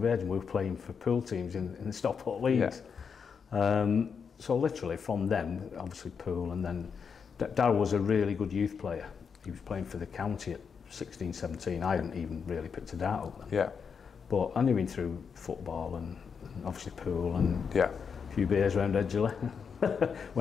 age, and we were playing for pool teams in the Stockport leagues. So literally from them, obviously pool, and then Darryl was a really good youth player. He was playing for the county at 16, 17. I hadn't even really picked a dart up then. Yeah. But I knew him through football and obviously pool and a few beers around Edgeley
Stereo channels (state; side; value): quieter; right; 6.3 dB